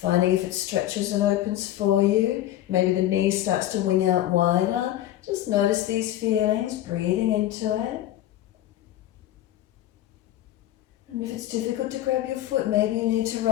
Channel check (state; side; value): quieter; right; 13.3 dB